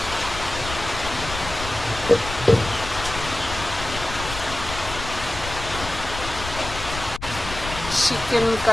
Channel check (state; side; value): noise; left; rumble, 9 dB below the sound